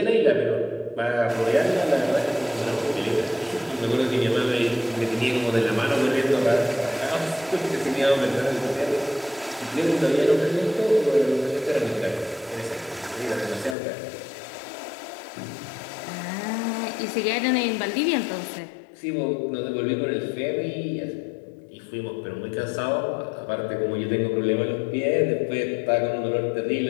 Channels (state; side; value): drops out; right; at 13.8 s